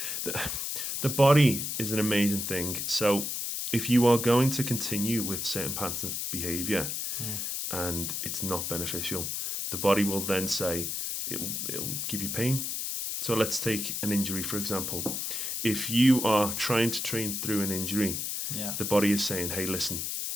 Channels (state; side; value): noise; left; hiss, 2 dB below the sound